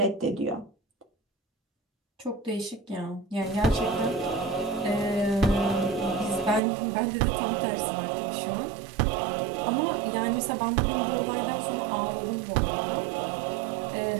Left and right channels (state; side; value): drops out; left; at 6.6 s